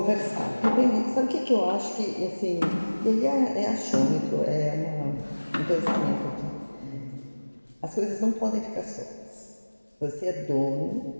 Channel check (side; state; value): both; inverted; correlation -1.00